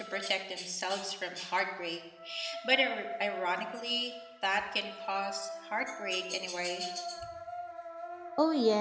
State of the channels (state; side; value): identical; both; correlation 1.00